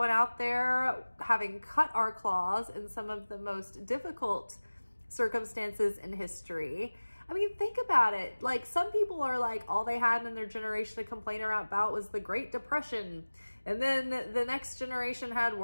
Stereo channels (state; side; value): inverted; both; correlation -1.00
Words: out there having cut our claws in some of the most difficult circumstances in history. I mean, think about it. Like some people are like, all they had in their generation to complain about was the Great Depression. And then the next generation had